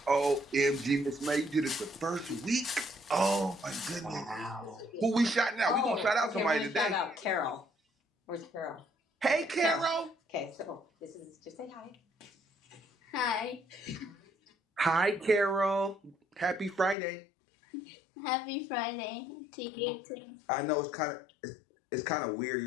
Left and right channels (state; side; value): drops out; right; at 16.9 s